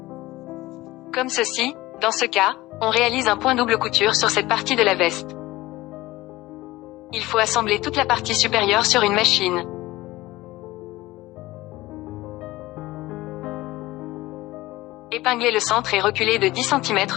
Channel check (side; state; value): right; quieter; 18.6 dB